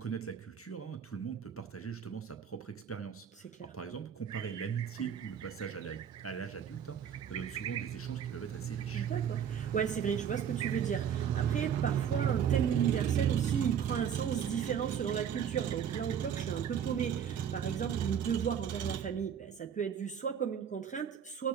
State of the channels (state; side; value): quieter; left; 8.3 dB